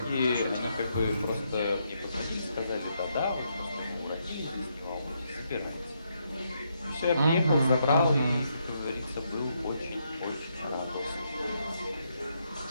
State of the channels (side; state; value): both; inverted; correlation -0.78